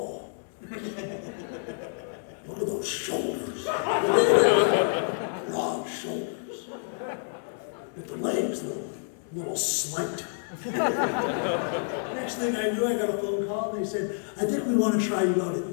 look at those shoulders, broad shoulders, with the legs, little slight. Next thing I knew, I got a phone call, and they said, I think we want to try you out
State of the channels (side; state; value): right; silent; digital silence